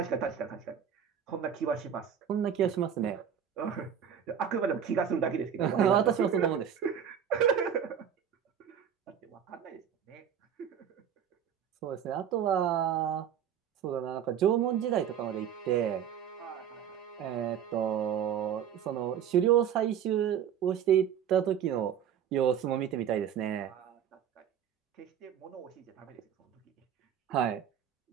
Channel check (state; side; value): quieter; left; 8.7 dB